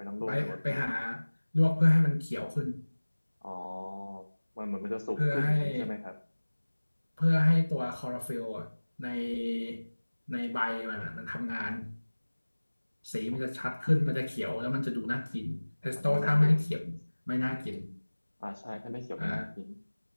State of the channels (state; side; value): inverted; both; correlation -1.00